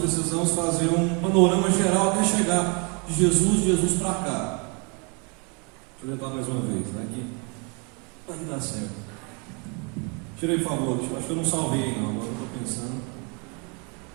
fazer um panorama geral até chegar de Jesus para cá. Deixa eu tentar mais uma vez. Vai que dá certo. Tirei, por favor. Acho que eu não salvei, não. Agora eu estou pensando.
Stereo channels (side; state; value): left; quieter; 33.7 dB